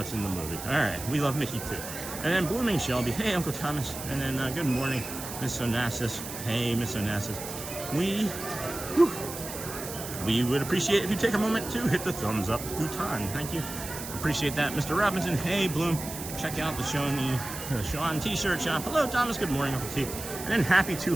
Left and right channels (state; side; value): noise; right; hiss, 9 dB below the sound